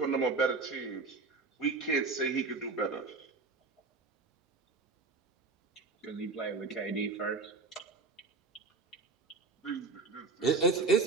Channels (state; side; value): quieter; left; 3.9 dB